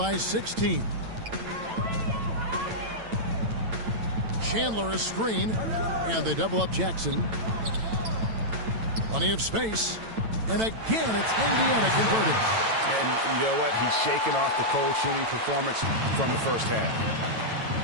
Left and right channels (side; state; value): left; late; 9.0 ms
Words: 16. Chandler a screen, and they double up Jackson. Plenty of space, and again it's Indiana converting. And you know what? He's shaking off the cold shooting performance from the first half.